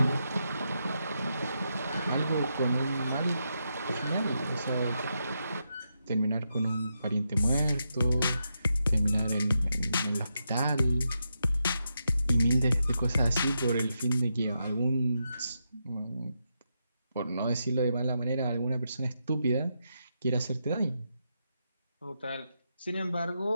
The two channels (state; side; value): inverted; both; correlation -0.84